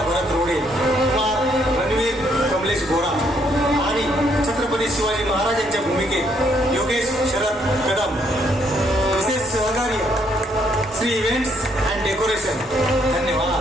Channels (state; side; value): normal; both; correlation 0.70